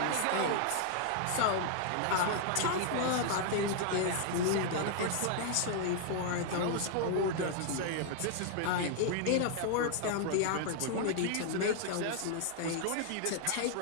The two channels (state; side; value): different; both; correlation 0.00